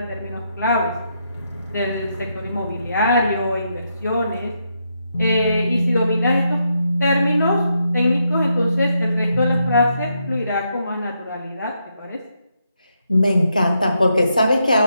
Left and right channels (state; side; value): inverted; both; correlation -0.80